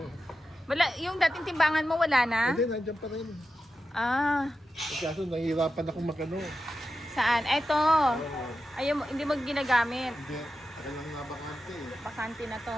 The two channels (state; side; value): normal; both; correlation 0.91